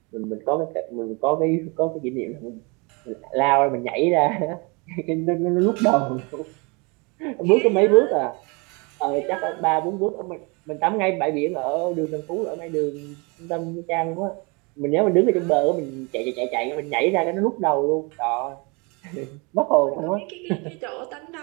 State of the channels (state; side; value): quieter; left; 29.8 dB